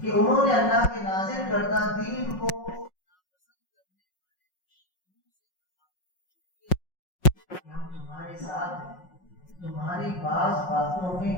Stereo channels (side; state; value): right; late; 5.5 ms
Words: انہوں نے اللہ کے نازل کردہ دین کو ہم تمہارے ساتھ ہیں، تمہاری بعض باتوں میں